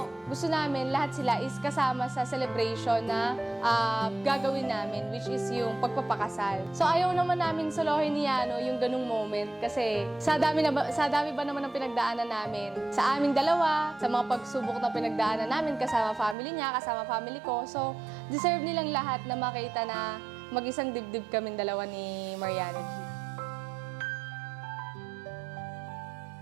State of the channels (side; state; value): left; drops out; at 16.4 s